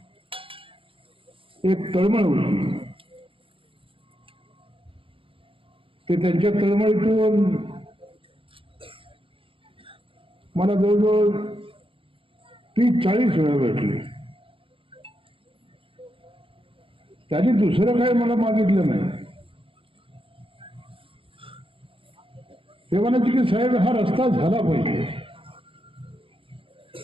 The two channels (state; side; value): late; left; 0.26 ms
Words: एक तळमळ होती. ते त्यांच्या तळमळीतून मला जवळजवळ 30-40 वेळा भेटले. त्यांनी दुसरं काही मला मागितलं नाही. ते म्हणायचे की साहेब, हा रस्ता झाला पाहिजे.